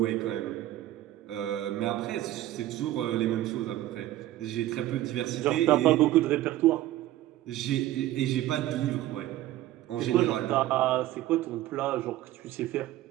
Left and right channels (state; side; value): quieter; left; 14.7 dB